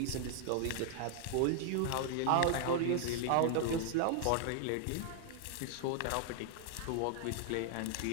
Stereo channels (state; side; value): different; both; correlation 0.00